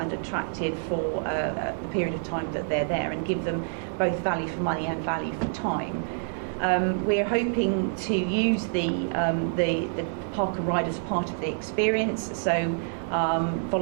attractive for a period of time that they're there, and give them both value for money and value for time. We're hoping to use the park and ride as part of the experience, so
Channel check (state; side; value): silent; left; digital silence